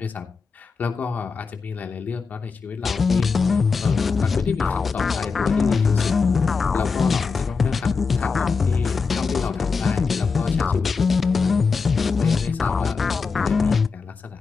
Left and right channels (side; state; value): right; quieter; 4.9 dB